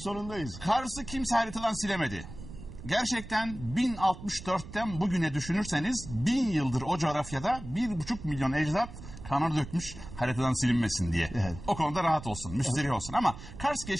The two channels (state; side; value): noise; right; rumble, 13 dB below the sound